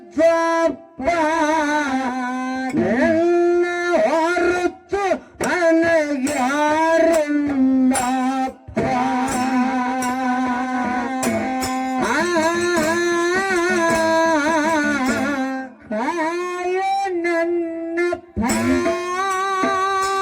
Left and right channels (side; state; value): both; identical; correlation 1.00